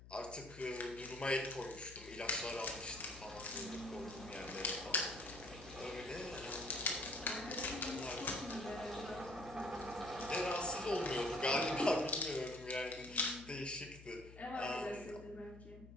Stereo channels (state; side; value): noise; left; hum, 17 dB below the sound